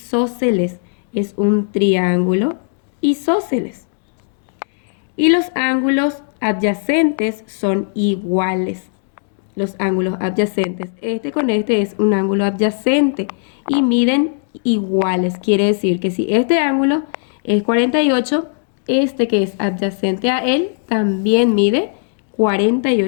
Es un triángulo isósceles. Y los ángulos adyacentes son iguales. Los ángulos adyacentes. Este con este es un ángulo adyacente y miden iguales. Quiere decir que si este ángulo es 48, este que es adyacente a él también mide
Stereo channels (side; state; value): right; silent; digital silence